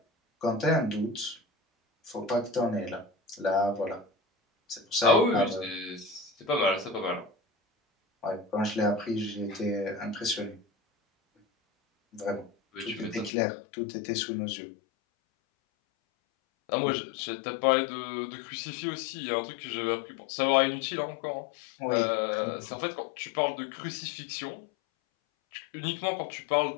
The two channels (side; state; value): right; drops out; at 13.3 s